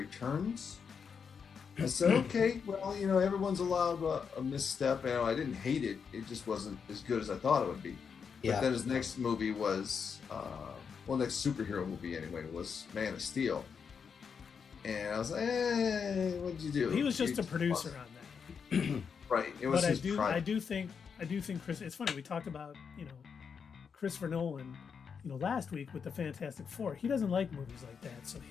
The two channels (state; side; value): quieter; right; 6.4 dB